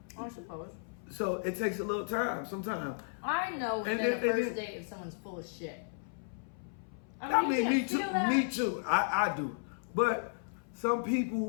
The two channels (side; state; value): right; silent; 55 dB below the other